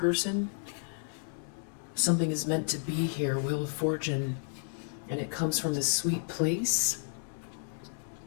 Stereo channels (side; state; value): right; silent; digital silence